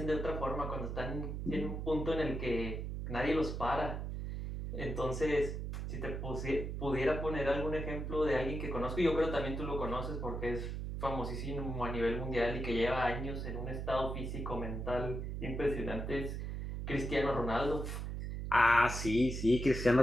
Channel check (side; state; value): right; noise; hum, 4 dB below the sound